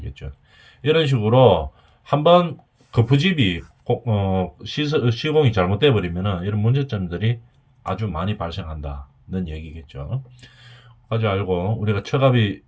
이런 식으로 한번 거푸집이 시공이 잘못돼 버리면은 이런 문제점들이 아주 많이 발생한다는 얘기겠죠. 까지 알고 우리가 처갑이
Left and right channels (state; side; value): identical; both; correlation 1.00